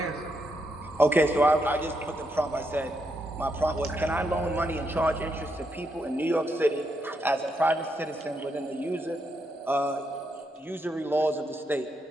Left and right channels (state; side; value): normal; both; correlation 0.80